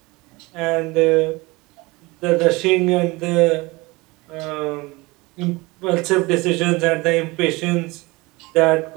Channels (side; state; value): left; quieter; 23.4 dB